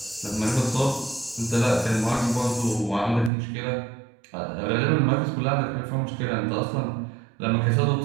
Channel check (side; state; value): left; drops out; at 3.3 s